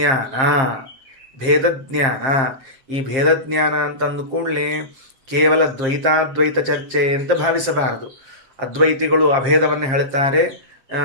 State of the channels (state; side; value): late; left; 7.5 ms